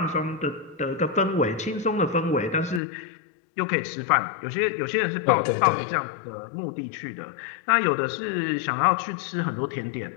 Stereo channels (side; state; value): right; drops out; at 2.8 s